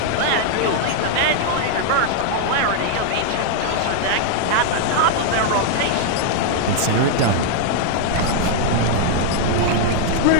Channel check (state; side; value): different; both; correlation -0.01